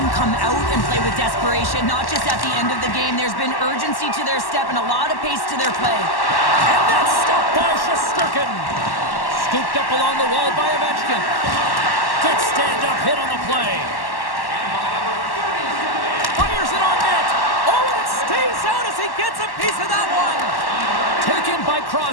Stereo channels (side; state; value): right; late; 1.1 ms